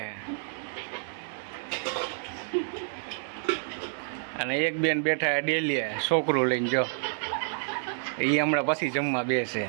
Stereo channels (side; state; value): left; silent; digital silence